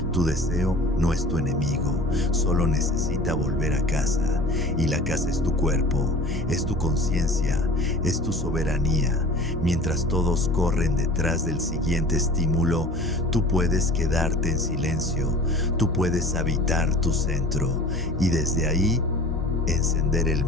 tu deseo no es tu enemigo, solo necesita volver a casa. Y la casa es tu cuerpo, es tu conciencia, es tu soberanía. Mientras todos corren detrás del siguiente estímulo, tú puedes quedarte en silencio, tú puedes habitar tu centro y desde ahí encender el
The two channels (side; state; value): left; noise; hum, 10 dB below the sound